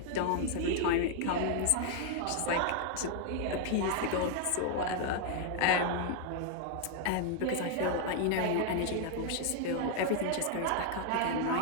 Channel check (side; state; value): both; different; correlation 0.00